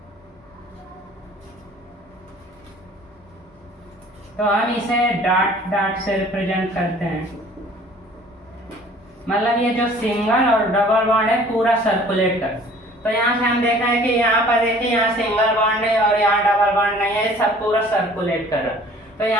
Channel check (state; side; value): normal; both; correlation 0.51